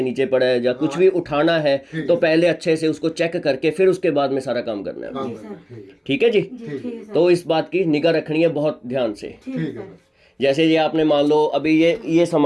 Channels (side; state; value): both; identical; correlation 1.00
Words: नीचे पड़ा है, या कुछ भी उठाना है, तो पहले अच्छे से उसको चेक करके फिर उसके बाद में सारा काम करना है। ठीक है जी, तो इस बात की निगाह रखनी है बहुत ध्यान से। जैसे ये आपने मान लो अभी ये